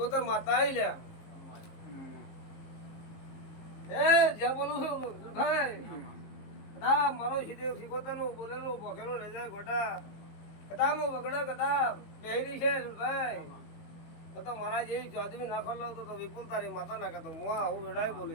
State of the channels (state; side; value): late; right; 19 ms